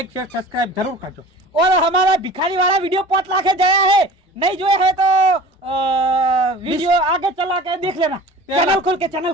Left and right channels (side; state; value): both; normal; correlation 0.41